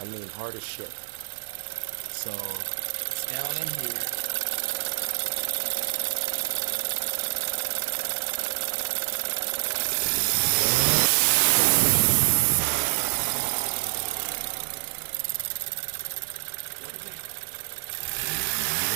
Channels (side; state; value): left; silent; 60 dB below the other